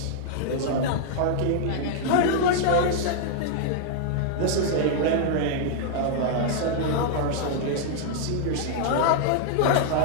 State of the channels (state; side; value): different; both; correlation -0.01